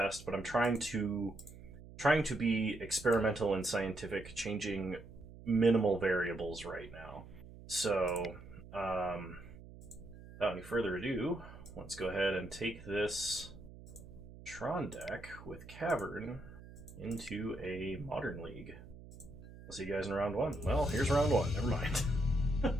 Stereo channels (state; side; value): noise; right; hum, 17 dB below the sound